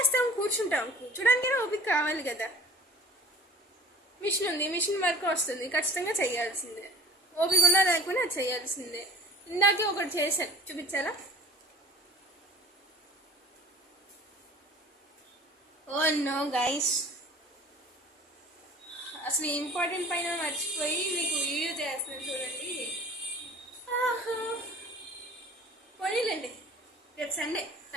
కూర్చోడానికైనా ఓపిక కావాలి కదా. మిషన్ ఉంది, మిషన్ వర్క్ వస్తుంది, ఖచ్చితంగా చేయాల్సిందే. ఓపిక ఉన్నా లేకపోయినా అది చేయాల్సిందే. ఇందాకే ఒకటి చేశాను, చూపించాలా? ఓ నో గైస్, అసలు ఇంపార్టెంట్ పైన మర్చిపోయి మీకు వీడియో చేస్తున్నాను చూడండి. పోనీలేండి, రేపు సండే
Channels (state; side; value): normal; both; correlation 0.45